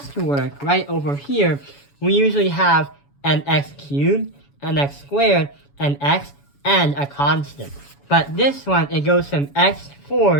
work right over here, we usually have an x cubed, an x squared, an x, and a constant. But this one, it goes from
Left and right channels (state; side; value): late; right; 7.1 ms